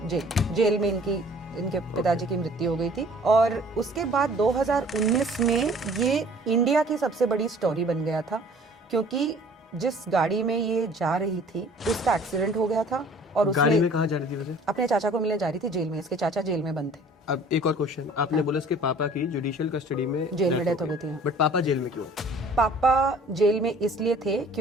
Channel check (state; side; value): normal; both; correlation 0.51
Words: में इनके पिताजी की मृत्यु हो गई थी। और उसके बाद 2019 में ये इंडिया की सबसे बड़ी स्टोरी बन गया था, क्योंकि जिस गाड़ी में ये जा रही थी उसका एक्सीडेंट हो गया था। और गाड़ी में कहाँ जा रही थी वैसे? अपने चाचा को मिलने जा रही थी जेल में। इसके चाचा जेल में बंद थे। अब एक और क्वेश्चन, आपने बोला इसके पापा की जुडिशियल कस्टडी में जेल में डेथ हो गई थी। बट पापा जेल में क्यों? पापा जेल में इसलिए थे